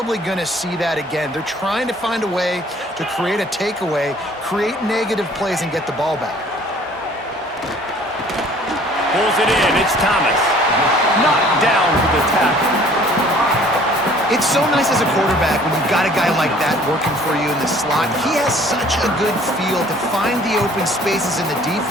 going to see that again. They're trying to find a way to create a takeaway, create negative plays, and get the ball back. Pulls it in. It's Thomas. Knocked down for the tackle. It's so nice as a quarterback when you've got a guy like that working for you in the slot. He has such a good feel to find the open spaces in the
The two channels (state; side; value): normal; both; correlation 0.54